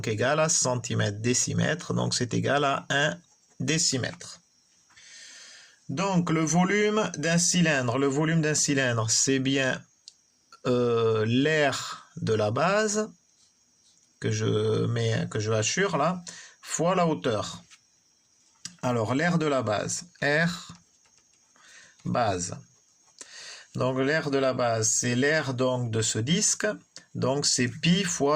égal à centimètre décimètre, donc c'est égal à 1 décimètre. Donc le volume d'un cylindre, c'est bien l'air de la base que je hachure là, fois la hauteur. Alors l'air de la base, R base. Donc l'air de la base, c'est l'air donc de ce disque, donc c'est pi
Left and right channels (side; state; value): both; identical; correlation 1.00